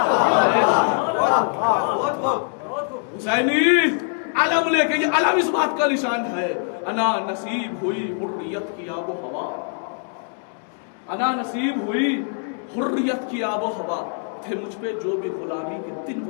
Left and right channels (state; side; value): silent; right; 57 dB below the other